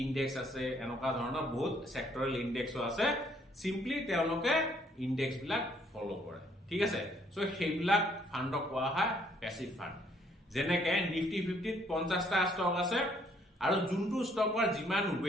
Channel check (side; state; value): both; normal; correlation 0.66